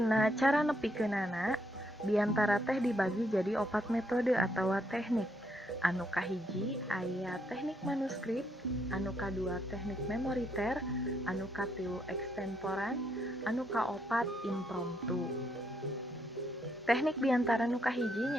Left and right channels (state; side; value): normal; both; correlation 0.75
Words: cara nepikeunana, Biantara teh dibagi jadi 4 metode atawa teknik. Anu kahiji aya teknik manuskrip, anu kadua teknik memoriter, anu katilu extemporan, anu kaopat impromptu. Teknik biantara nu kahiji